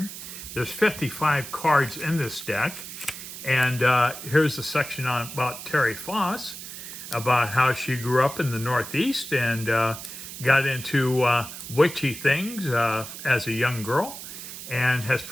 There's 55 cards in this deck. And here's the section about Terri Foss, about how she grew up in the Northeast and got into witchy things as a young girl, and has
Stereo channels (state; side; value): noise; right; hiss, 11 dB below the sound